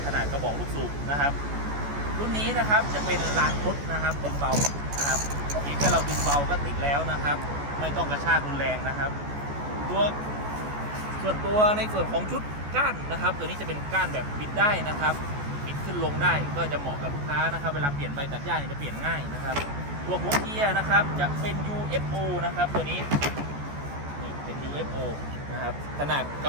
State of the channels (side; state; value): left; late; 14 ms